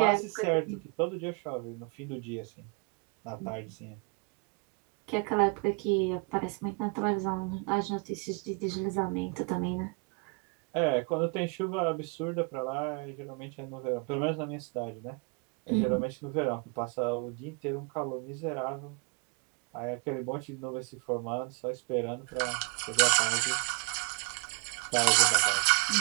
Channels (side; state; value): left; quieter; 32.5 dB